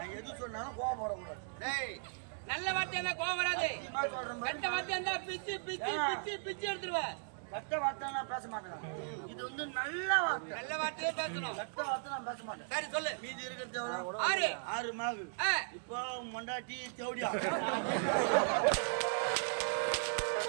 எது சொன்னாலும் கோபப்படக்கூடாது. டேய் நல்ல வார்த்தை இருந்தா கோவம் வராது. சத்தியமா சொல்றேன் பாரு. கெட்ட வார்த்தை இருந்தா பிச்சு பிச்சு பிச்சு பிச்சு எடுத்துருவேன். கெட்ட வார்த்தை நான் பேச மாட்டேன். இது வந்து நல்ல வார்த்தை. நல்ல வார்த்தையே பேசணும். கெட்ட வார்த்தை நான் பேச மாட்டேன். சரி சொல்லு. மீதி இருக்கிறது எவ்வளவு? 6 6 மாகு. இப்போ மொண்டாட்டி தேவடியா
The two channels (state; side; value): silent; left; digital silence